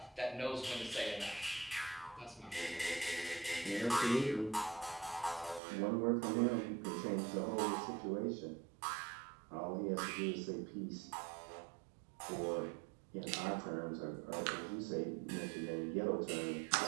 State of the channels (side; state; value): left; drops out; at 5.6 s